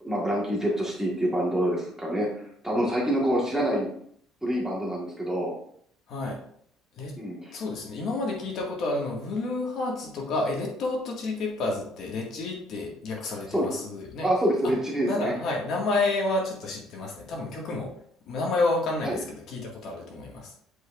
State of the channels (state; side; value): normal; both; correlation 0.66